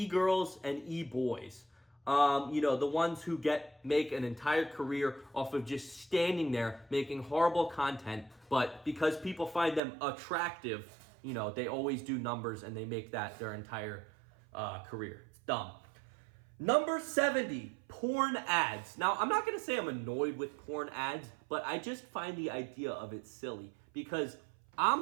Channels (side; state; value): left; drops out; at 9.8 s